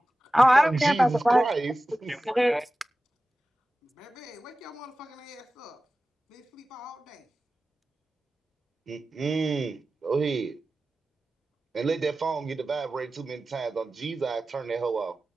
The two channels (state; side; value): normal; both; correlation 0.95